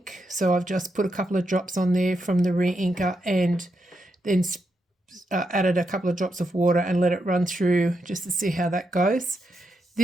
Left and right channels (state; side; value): normal; both; correlation 0.83